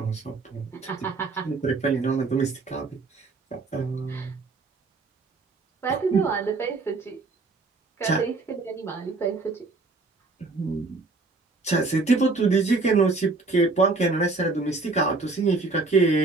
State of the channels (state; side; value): quieter; left; 3.7 dB